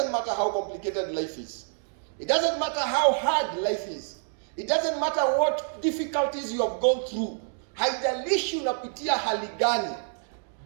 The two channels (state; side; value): silent; left; digital silence